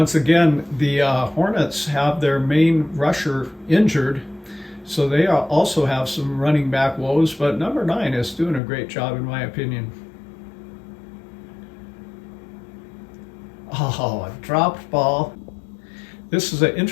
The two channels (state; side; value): drops out; right; at 8.6 s